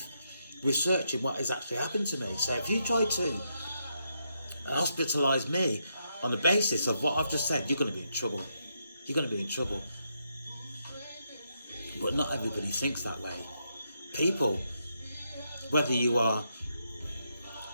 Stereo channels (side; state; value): both; inverted; correlation -0.80